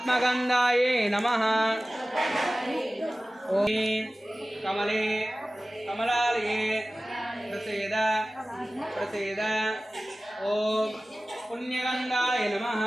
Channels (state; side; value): normal; both; correlation 0.97